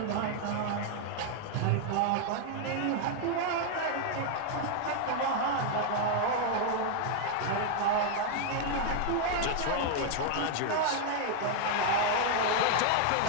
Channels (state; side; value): different; both; correlation 0.00